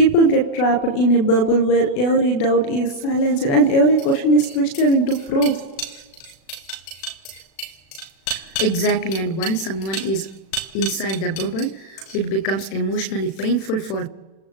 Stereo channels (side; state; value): right; late; 36 ms